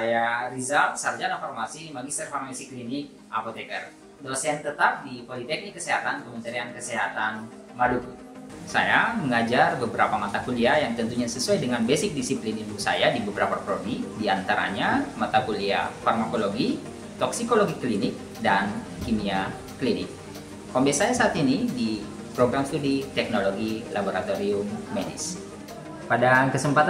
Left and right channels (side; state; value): both; identical; correlation 1.00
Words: Rizal, Sarjana Farmasi, Magister Farmasi Klinik, Apoteker, dosen tetap di Politeknik Kesehatan Kementerian Kesehatan Maluku. Saya mengajar beberapa mata kuliah yang tentunya sesuai dengan basic disiplin ilmu saya di beberapa prodi, diantaranya mata kuliah farmakologi, toksikologi klinik, dan kimia klinik. Home base saya saat ini di program studi teknologi laboratorium medis. Pada